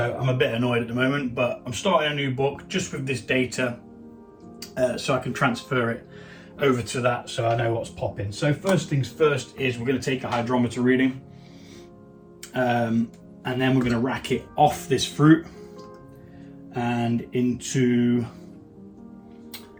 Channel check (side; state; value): both; identical; correlation 1.00